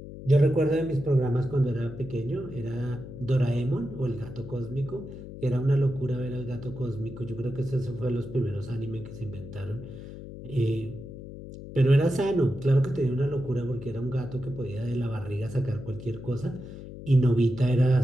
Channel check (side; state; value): left; noise; hum, 12 dB below the sound